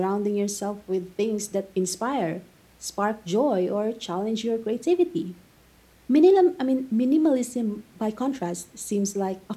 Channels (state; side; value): identical; both; correlation 1.00